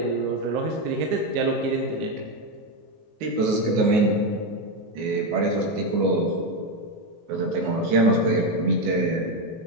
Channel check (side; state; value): left; late; 19 ms